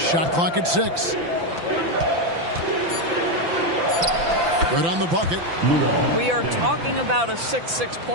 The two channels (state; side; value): late; left; 5.9 ms